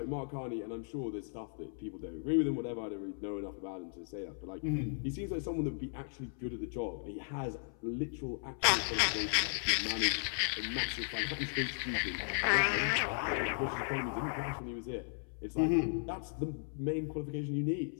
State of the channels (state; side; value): silent; right; 54 dB below the other